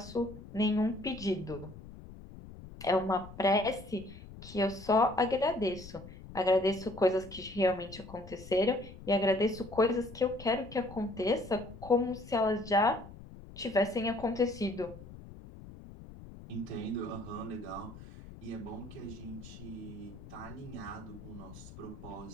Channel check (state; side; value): noise; left; rumble, 15 dB below the sound